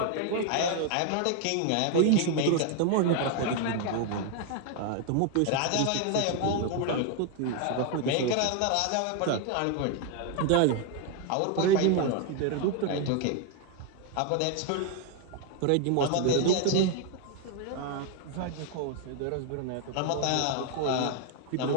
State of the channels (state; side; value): different; both; correlation 0.00